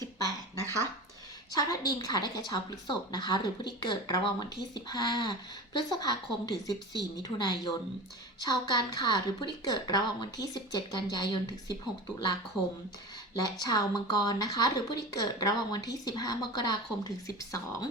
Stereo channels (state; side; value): normal; both; correlation 0.31